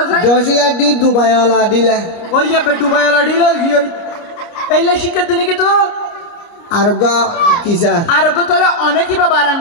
স্যার দশিয়া ডি দুবাই ওলা দিলে ওই যে দুবাই ওলা ডিলা কি ওই এইলে শিক্ষা দিনে কি তো আর ওগা কি স্যার আর ওগো তোলে অনেকই বা বারাং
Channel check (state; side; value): late; right; 29 ms